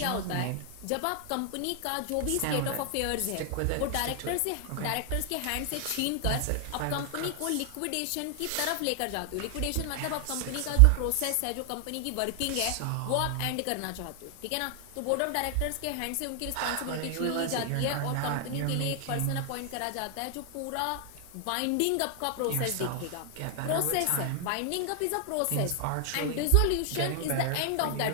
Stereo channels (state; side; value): different; both; correlation 0.00